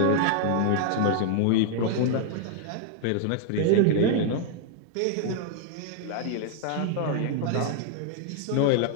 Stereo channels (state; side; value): different; both; correlation 0.00